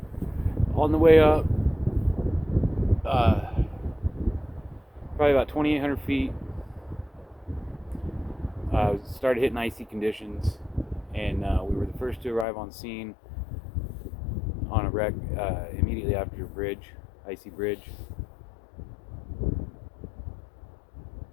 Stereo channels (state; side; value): drops out; right; at 12.5 s